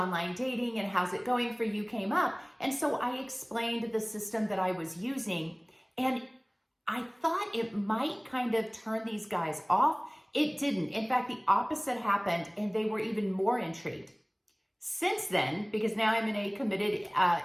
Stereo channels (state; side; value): identical; both; correlation 1.00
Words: dating and how's it going for you came up. And so I explained the system that I was using, and I thought it might kind of turn these guys off. It didn't. In fact, the opposite happened, and they were even more intrigued. Since then, because now I'm in a committed